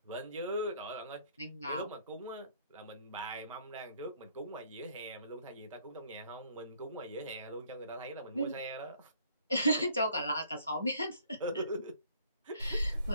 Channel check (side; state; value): both; inverted; correlation -0.62